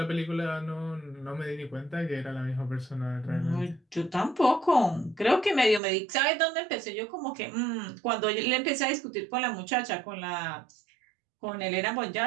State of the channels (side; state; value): left; drops out; at 5.8 s